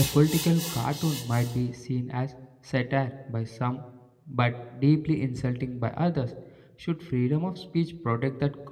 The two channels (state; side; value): identical; both; correlation 1.00